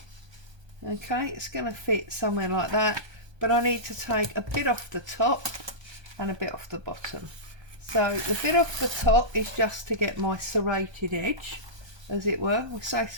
Okay, it's going to fit somewhere like that, but I need to take a bit off the top and a bit off the bottom. So the bit off the top is just to get my serrated edge, as it were. We say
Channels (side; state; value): left; late; 1.2 ms